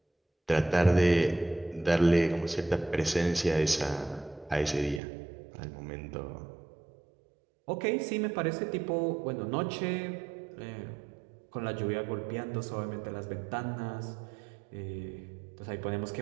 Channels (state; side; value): drops out; left; at 5.0 s